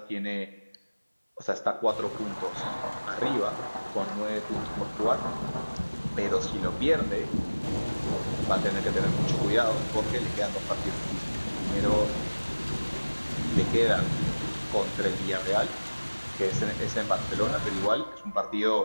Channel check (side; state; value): both; inverted; correlation -1.00